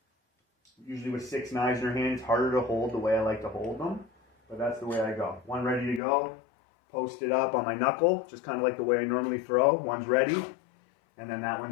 Usually with 6 knives in your hand, it's harder to hold the way I like to hold them, but that's the way I go. One ready to go, post it up on my knuckle, just kind of like the way I normally throw. One's ready, and then that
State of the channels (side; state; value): right; drops out; at 6.0 s